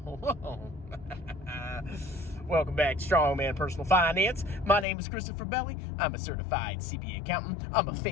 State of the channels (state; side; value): drops out; right; at 4.9 s